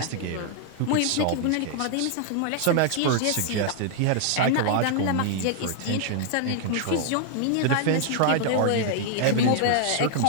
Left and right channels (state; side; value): different; both; correlation 0.00